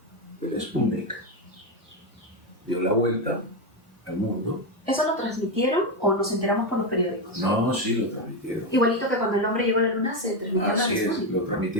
el Sputnik, dio la vuelta al mundo. ¿Eso lo transmitieron o nos enteramos por los periódicos? No, sí lo transmitieron. Igualito que cuando el hombre llegó a la luna se transmitió. Así es, lo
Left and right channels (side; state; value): both; normal; correlation 0.09